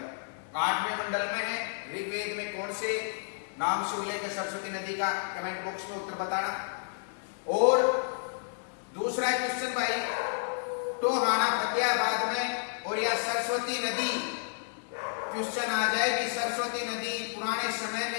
8वें मंडल में है, ऋग्वेद में कौन से नाम से उल्लेख है सरस्वती नदी का, कमेंट बॉक्स में उत्तर बताना। और दूसरा क्वेश्चन भाई, टोहाना फतेहाबाद में और या सरस्वती नदी, क्वेश्चन आ जाए कि सरस्वती नदी पुराने समय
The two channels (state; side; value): silent; right; digital silence